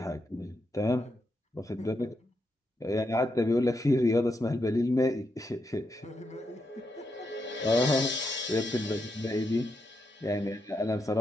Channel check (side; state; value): both; normal; correlation 0.83